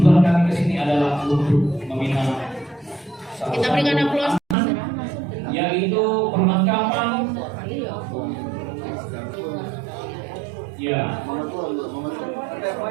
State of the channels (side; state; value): left; drops out; at 4.5 s